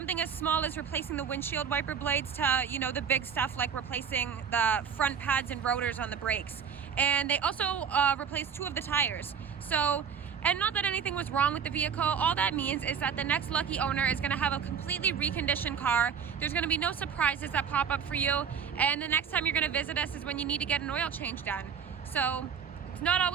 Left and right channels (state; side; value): quieter; left; 7.1 dB